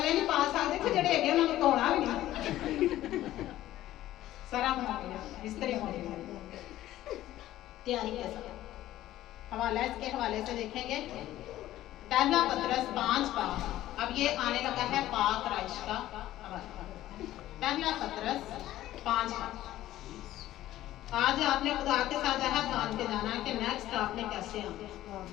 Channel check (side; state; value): right; quieter; 14.3 dB